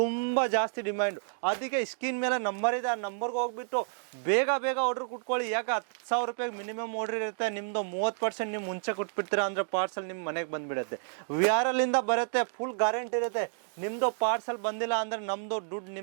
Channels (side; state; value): left; silent; 58 dB below the other